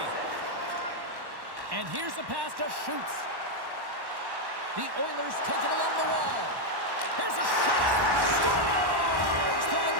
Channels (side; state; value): left; late; 1.1 ms